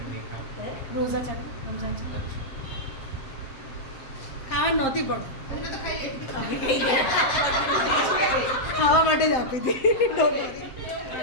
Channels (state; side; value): late; right; 7.6 ms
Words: નહીં ખાવ? રોઝા છે રમઝાન છે ખાવા નહોતી પણ તમે તો ખાઈ લીધું. અમે કઈ ગયા. ખાવા માટે જ આપી હતી.